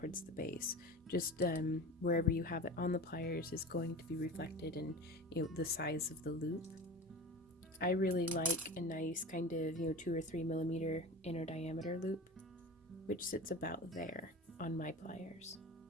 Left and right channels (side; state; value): both; normal; correlation 0.33